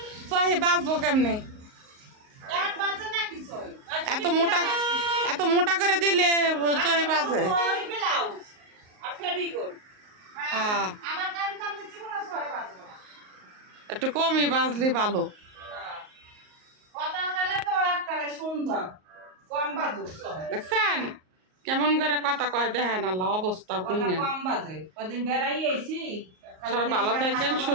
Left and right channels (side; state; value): left; late; 38 ms